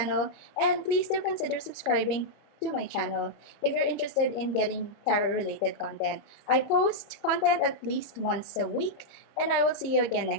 And please do consider subscribing to my channel if you're interested in getting tarot-related content. I post content at least once a week, and I will see you again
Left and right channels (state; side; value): late; right; 30 ms